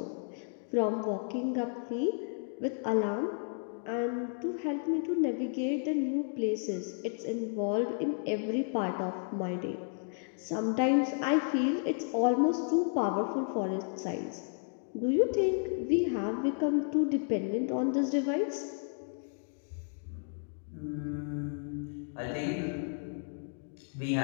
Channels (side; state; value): right; silent; 56 dB below the other